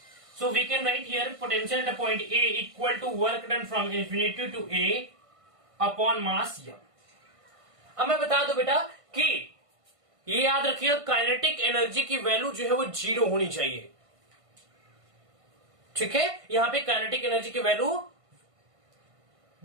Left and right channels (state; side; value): late; left; 1.5 ms